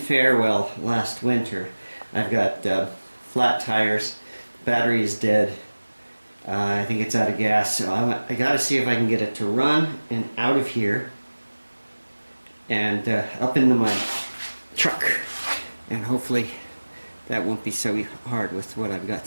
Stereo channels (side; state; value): both; inverted; correlation -1.00